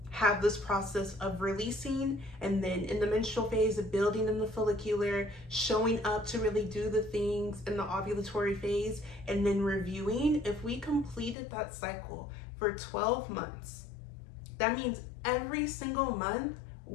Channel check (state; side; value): drops out; right; at 11.4 s